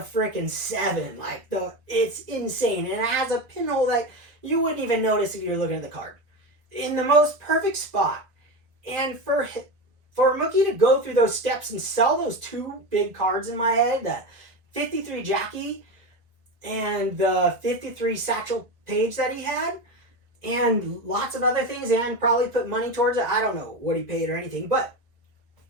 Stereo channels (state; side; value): late; left; 1.7 ms